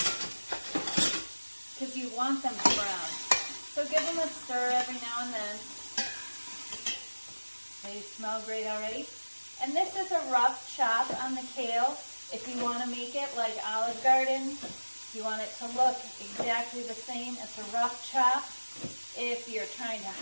because you want them to brown. So give them a stir every now and then. They smell great already. And this is a rough chop on the kale. If you want to make it like Olive Garden, if you want it to look exactly the same, it's a rough chop. If you're trying to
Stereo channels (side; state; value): both; inverted; correlation -1.00